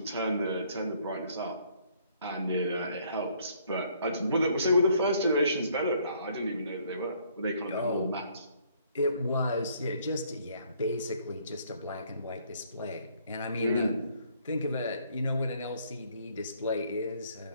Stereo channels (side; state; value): both; inverted; correlation -0.64